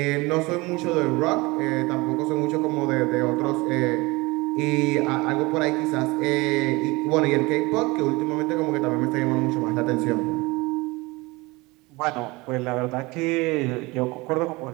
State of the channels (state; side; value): quieter; left; 23.4 dB